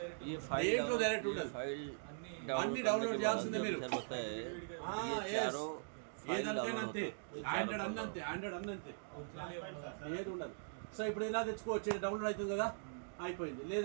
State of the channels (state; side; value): silent; left; digital silence